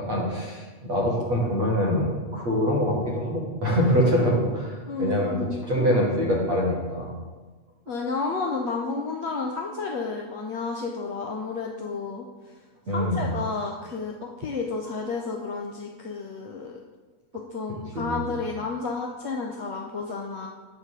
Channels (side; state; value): left; late; 8.3 ms